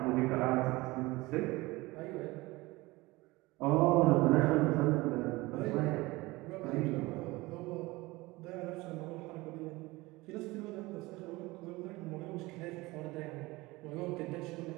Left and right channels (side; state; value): left; quieter; 21.4 dB